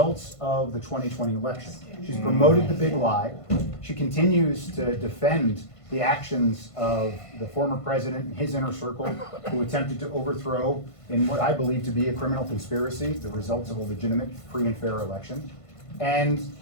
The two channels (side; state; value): right; late; 1.5 ms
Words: of the 2020 election. She's promoted the big lie. She continues to defend the actions of the former president and his inner circle who attempted to overthrow, in what I believe to be a criminal conspiracy, the results of a legitimate, free and fair election. And